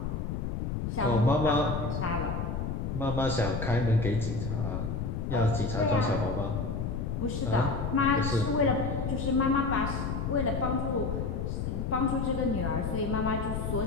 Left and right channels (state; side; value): noise; left; rumble, 2 dB below the sound